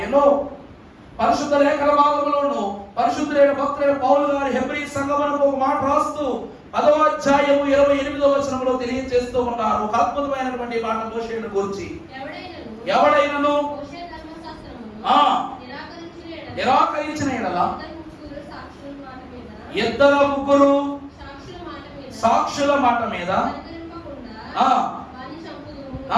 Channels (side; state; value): both; identical; correlation 1.00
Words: పరిశుద్ధ లేఖన భాగంలోను పరిశుద్ధులైన భక్తులైన పౌలు గారు హెబ్రీ సంఘమునకు ఒక మాట రాస్తూ 10వ అధ్యాయము 28వ వచనంలో తెలియజేస్తూ ఉన్నారు. ఒక అద్భుతమైనటువంటి మాట మోషేను గురించి. ఎవడైనను నిరాకరించిన ఎడల ఇద్దరు ముగ్గురు సాక్షుల మాట మీద